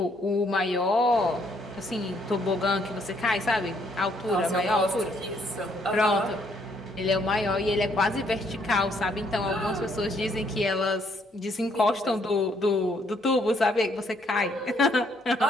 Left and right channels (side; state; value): both; normal; correlation 0.69